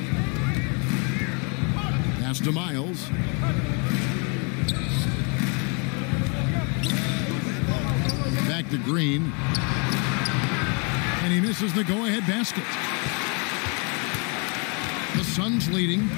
Pass to Miles. Back to Green. And he misses the go-ahead basket. The Suns leading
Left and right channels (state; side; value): quieter; right; 33.5 dB